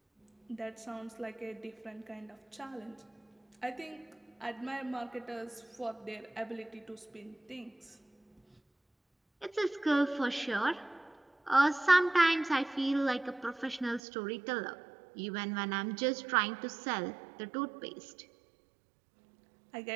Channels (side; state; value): left; drops out; at 14.0 s